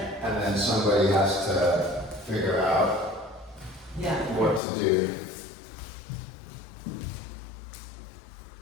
somebody has to figure out Yeah. what to do.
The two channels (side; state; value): right; drops out; at 4.6 s